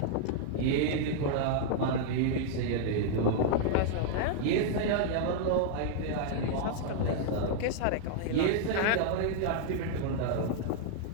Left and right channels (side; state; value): both; different; correlation -0.01